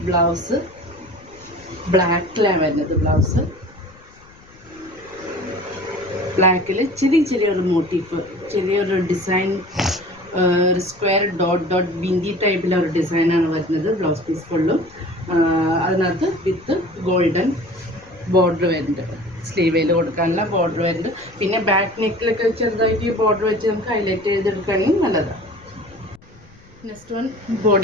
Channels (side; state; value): left; noise; rumble, 25 dB below the sound